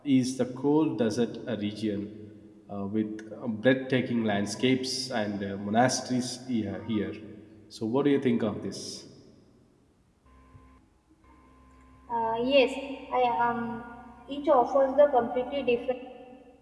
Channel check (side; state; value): both; identical; correlation 1.00